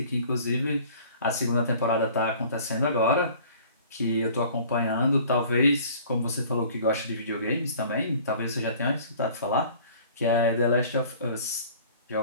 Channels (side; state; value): both; inverted; correlation -0.49